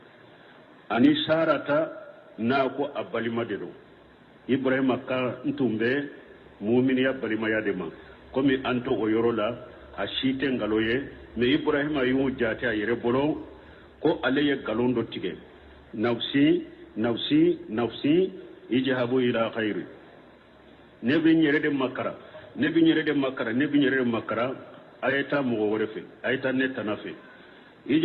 ani sarata na ko abalima dedo ibrahima ka ntumbe mu'min ya balima ya dema komi anto oyorola ashite ngaloye me ibrahima yu jati ayere bolo ko aleye galondo tige nafsi nafsi nafsi ijahabu ila khairu nebi nyere de makara ayata mo worefe ayata netanafe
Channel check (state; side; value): identical; both; correlation 1.00